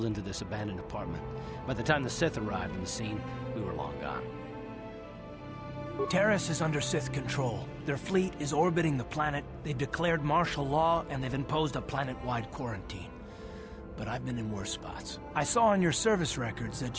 into this abandoned apartment. By the time the Sith arrived on the scene, we were long gone. Terrace is under Sith control. Their fleet is orbiting the planet, they've declared martial law, and they've imposed a planet-wide quarantine. But I've been in worse spots. I saw on your service records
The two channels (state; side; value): identical; both; correlation 1.00